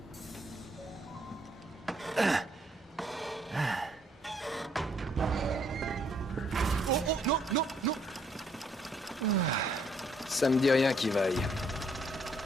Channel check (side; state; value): both; normal; correlation 0.68